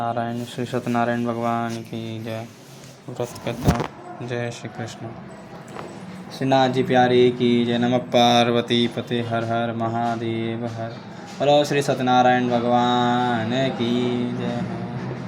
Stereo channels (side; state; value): both; identical; correlation 1.00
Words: श्री सत्यनारायण भगवान की जय। व्रत कथा। जय श्री कृष्ण। श्रीनाथ जी प्यारे की जय। नमः पार्वती पते हर हर महादेव हर। बोलो श्री सत्यनारायण भगवान की जय।